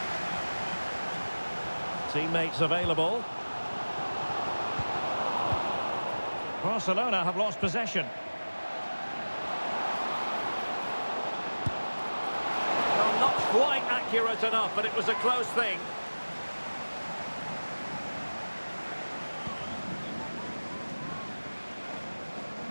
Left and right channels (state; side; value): inverted; both; correlation -1.00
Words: Teammates available. Barcelona have lost possession. Well, not quite accurate enough, but it was a close thing.